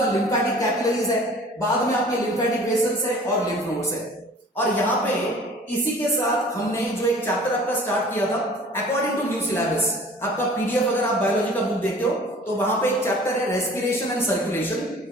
लिम्फेटिक कैपिलरीज है, बाद में आपके लिम्फेटिक वेसल्स है और लिम्फ नोड्स है। और यहां पे इसी के साथ हमने जो एक चैप्टर आपका स्टार्ट किया था, अकॉर्डिंग टू न्यू सिलेबस, आपका पीडीएफ अगर आप बायोलॉजी का बुक देखते हो तो वहां पे एक चैप्टर है रेस्पिरेशन एंड सर्कुलेशन,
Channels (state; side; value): normal; both; correlation 0.47